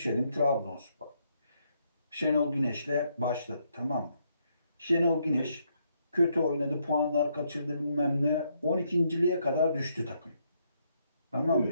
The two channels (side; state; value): both; inverted; correlation -0.75